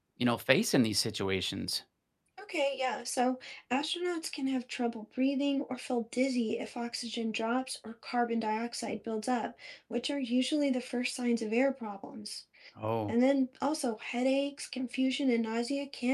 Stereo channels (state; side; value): identical; both; correlation 1.00